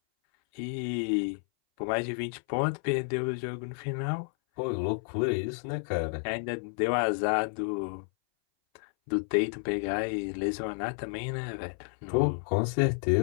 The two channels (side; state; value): right; silent; 57 dB below the other